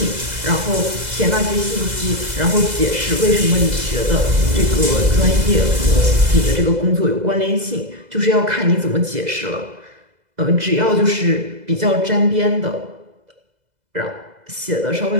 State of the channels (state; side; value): late; left; 2.0 ms